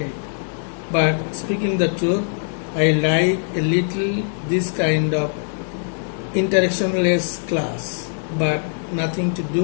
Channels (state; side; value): silent; right; digital silence